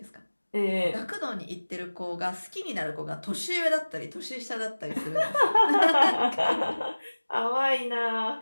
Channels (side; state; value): both; inverted; correlation -1.00